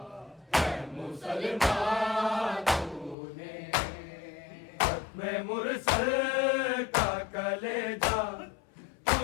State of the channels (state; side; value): drops out; right; at 3.2 s